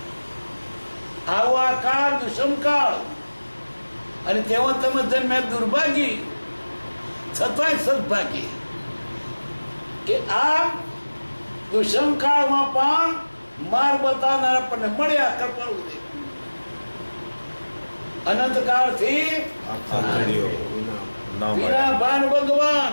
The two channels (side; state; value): both; inverted; correlation -1.00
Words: આવો આ કાળ દુષ્મકાળ, અને તેમાં તમે જન્મે દુર્ભાગી, છતાંય સદભાગી કે આ દુષ્મકાળમાં પણ માર્ગ બતાવનાર આપણને મળ્યા. કૃપાળુ દેવ અનંતકાળથી વિના ભાન